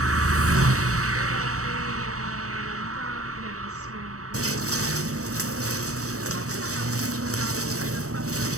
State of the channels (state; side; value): late; left; 0.65 ms